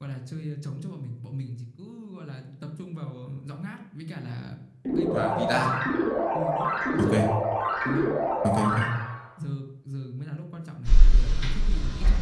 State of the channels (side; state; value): both; identical; correlation 1.00